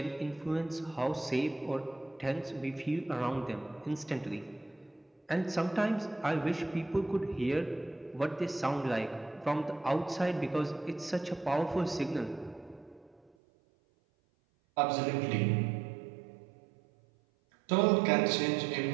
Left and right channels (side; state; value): left; drops out; at 13.3 s